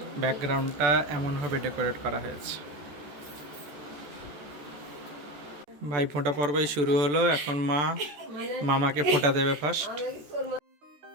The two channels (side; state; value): left; late; 14 ms